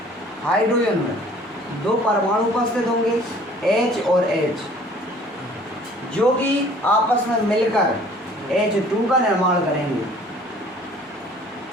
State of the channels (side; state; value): both; normal; correlation 0.53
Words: में दो परमाणु उपस्थित होंगे, H और H, जो कि आपस में मिलकर H2 का निर्माण करेंगे।